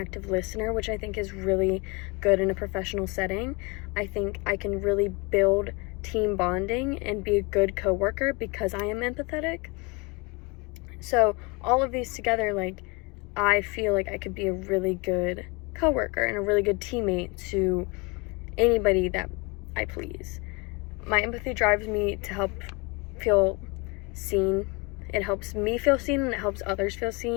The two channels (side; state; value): right; quieter; 28.1 dB